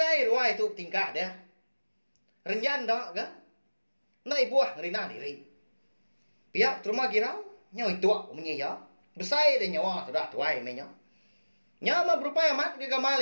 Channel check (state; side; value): inverted; both; correlation -1.00